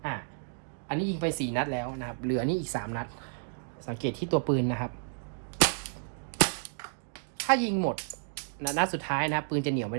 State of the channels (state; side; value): silent; left; digital silence